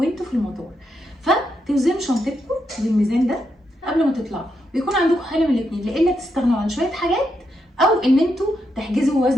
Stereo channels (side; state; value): both; normal; correlation 0.82